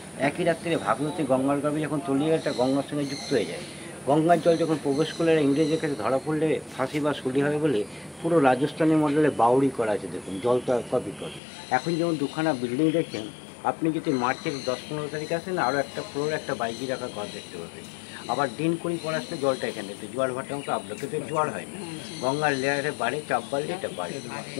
একই রাত্রে ভাগীরথী গঙ্গার গাবে যখন তলিয়ে একটা গঙ্গার সঙ্গে যুক্ত হয়ে যায়, গঙ্গার জল যখন প্রবেশ করলে ইংরেজের কাছে ধরা পড়লে ফাঁসি বা শুলি হবে বলে পুরো রাজস্থানী মডেলে বাউরি করা আছে। দেখুন জলটা কপি করে। এখন যেমন দুখানা বিল্ডিং দেখছেন, আপনি যদি মার্চের 10-15 তারিখ আসেন, আরও একটা ফ্লোর, একটা বাইজি রাখা ঘর দেখতে পাবেন। আবার দিন করি পর আসলে জলটা এখানে দেখতে জোয়ার ভাটার মতো আপলোড, কিন্তু জোয়ার হয় না, গঙ্গার লেয়ারে বাড়ে, চাপ বাড়লে এটা বাড়ে।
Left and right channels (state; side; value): drops out; right; at 11.4 s